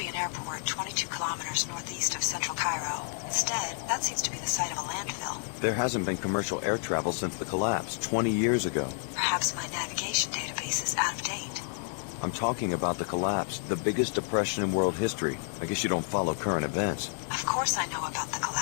an airport 22 kilometers northeast of central Cairo. Instead, that seems to be the site of a landfill. There hasn't been commercial air travel since the collapse, 20 years ago. Perhaps my navigation database is out of date. I'm talking about the collapse, the biggest depression in world history. I guess you don't follow current events. Of course I know about the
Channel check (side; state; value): right; silent; 58 dB below the other